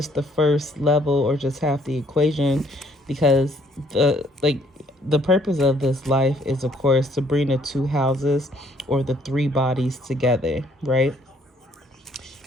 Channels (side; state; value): both; normal; correlation 0.65